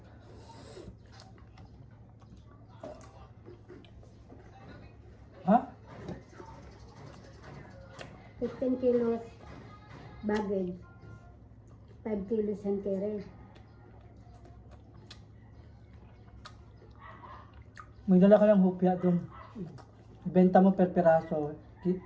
Ha? 15 kilos baggage. 5 kilos hand carry. May dala ka lang hupya doon. Ibenta mo per piraso.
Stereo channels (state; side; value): identical; both; correlation 1.00